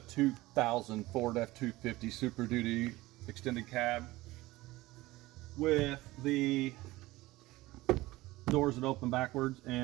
2000 Ford F250 Super Duty extended cab with the doors that open backwards,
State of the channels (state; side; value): quieter; left; 18.9 dB